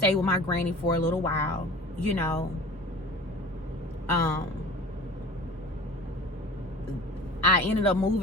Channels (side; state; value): both; normal; correlation 0.40